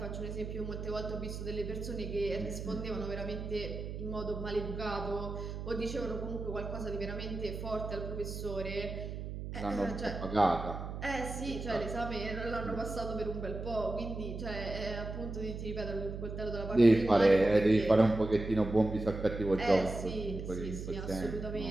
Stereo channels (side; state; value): right; noise; hum, 7 dB below the sound